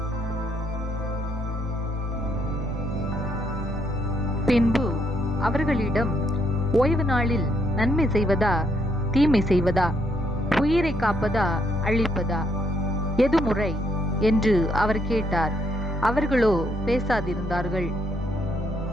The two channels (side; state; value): both; normal; correlation 0.73